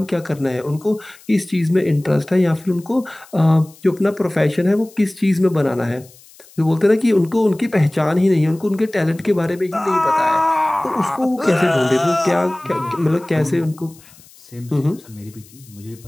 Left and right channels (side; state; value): left; noise; hiss, 25 dB below the sound